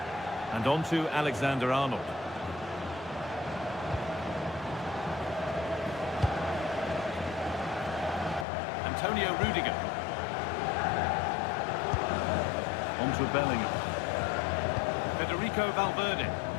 And on to Alexander-Arnold. Antonio Rudiger. On to Bellingham. Federico Valverde.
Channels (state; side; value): drops out; right; at 8.5 s